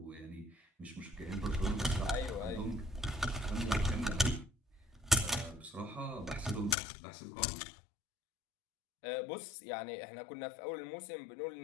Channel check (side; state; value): right; drops out; at 6.8 s